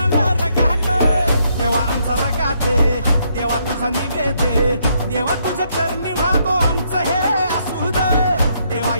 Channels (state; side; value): inverted; both; correlation -0.73